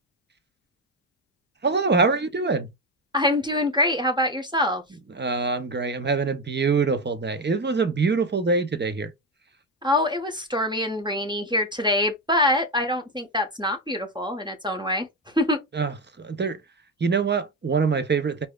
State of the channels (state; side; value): normal; both; correlation 0.13